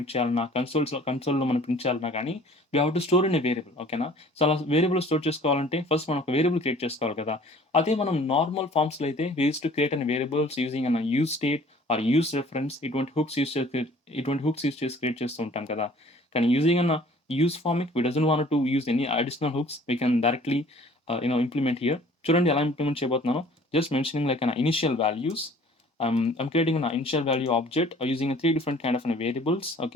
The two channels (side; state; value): both; normal; correlation 0.52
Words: చేయాలన్నా, కన్సోల్‌లో మనం ప్రింట్ చేయాలన్నా గానీ we have to store in a variable. ఓకేనా? సో అలా వేరియబుల్ స్టోర్ చేసుకోవాలంటే ఫస్ట్ మనం ఒక వేరియబుల్ క్రియేట్ చేసుకోవాలి కదా! అదే మనం నార్మల్ ఫార్మ్స్‌లో అయితే we used to create an variables using use state or use reference, ఇటువంటి హుక్స్ యూజ్ చేసి క్రియేట్ చేస్తూ ఉంటాం కదా! కానీ using use Formic, we doesn't want to use any additional hooks. We can directly implement here. చూడండి ఎలా ఇంప్లిమెంట్ చేయబోతున్నానో. Just mentioning like an initial values. I'm creating an initial value object using 3 different kind of variables.